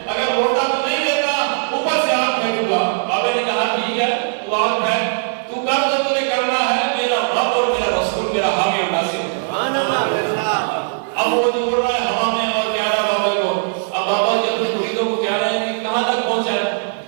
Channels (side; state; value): left; silent; 57 dB below the other